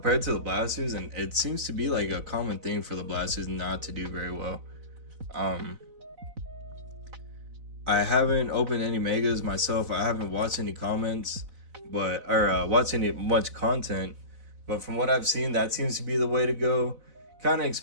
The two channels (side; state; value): left; late; 4.0 ms